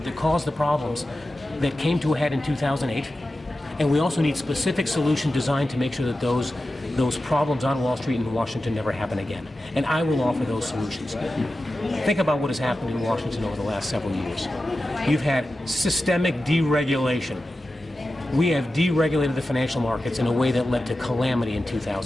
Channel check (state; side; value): normal; both; correlation 0.93